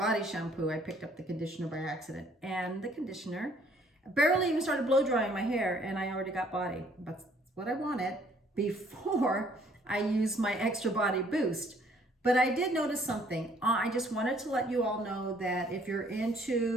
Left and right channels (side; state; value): both; normal; correlation 0.62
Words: picked up the conditioner by accident, and the conditioner barely even started blow drying my hair, and I already got body. That's what I wanted before I used my Extra Body Boost. But I did notice something. I just wanted to let you all know that if you're